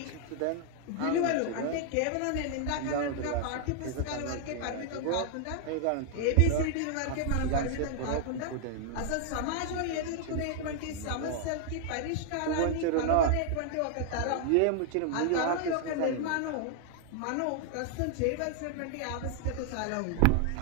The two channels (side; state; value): both; different; correlation 0.00